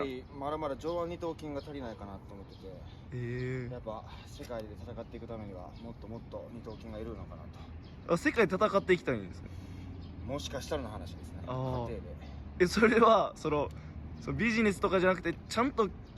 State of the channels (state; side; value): identical; both; correlation 1.00